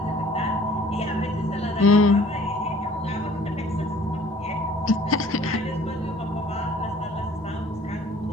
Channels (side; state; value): both; normal; correlation 0.54